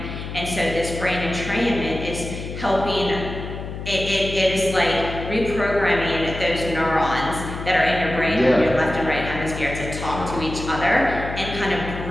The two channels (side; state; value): left; noise; hum, 8 dB below the sound